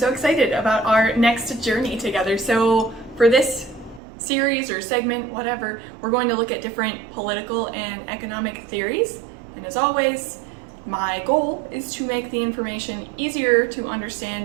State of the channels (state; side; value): drops out; left; at 4.0 s